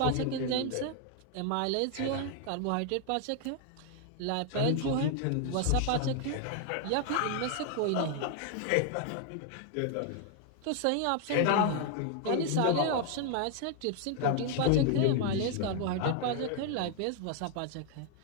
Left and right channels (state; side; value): different; both; correlation 0.00